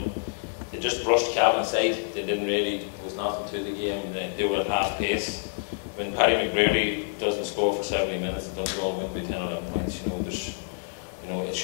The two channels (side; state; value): right; silent; digital silence